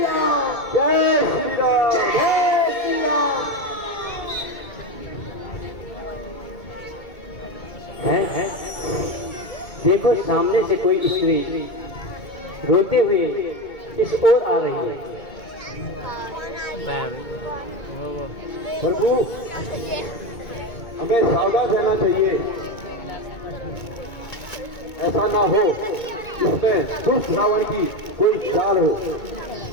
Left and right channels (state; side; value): late; right; 2.2 ms